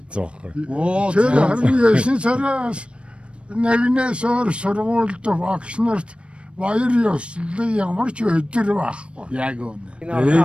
ütсэн байхгүй. Оо Тэр за. харин 9 сараас нэгнээс өөр сургуульд багш нарт баяр ёслол ямар ч өдөр байхгүй. Яг үнэ.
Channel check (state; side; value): late; left; 0.059 ms